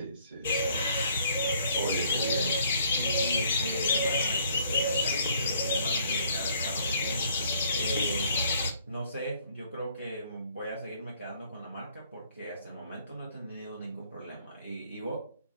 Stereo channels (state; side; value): inverted; both; correlation -0.62